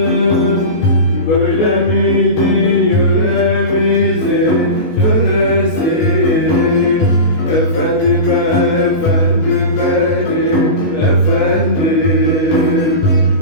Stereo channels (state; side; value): late; right; 19 ms